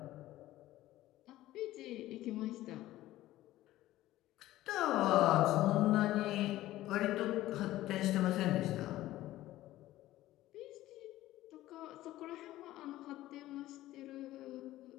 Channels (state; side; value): quieter; right; 15.4 dB